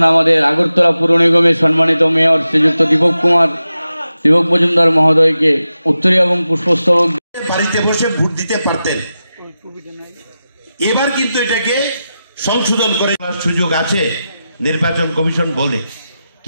আগরতলা পুর নিগমের সম্মানিত মেয়র শ্রীযুক্ত দীপক মজুমদার মহোদয়কে উত্তরীয় এবং পুষ্পস্তবক বাড়িতে বসে ভোট দিতে পারতেন। এবার কিন্তু এটাকে সংশোধন করে সুযোগ আছে নির্বাচন কমিশন বলে,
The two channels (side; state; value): both; inverted; correlation -0.91